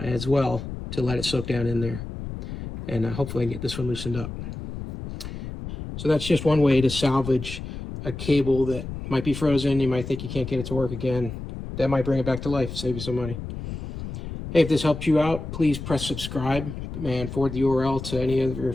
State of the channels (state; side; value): noise; left; rumble, 8 dB below the sound